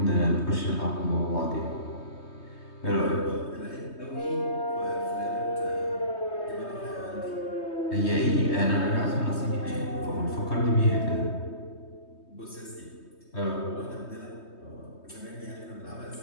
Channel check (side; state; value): right; late; 3.2 ms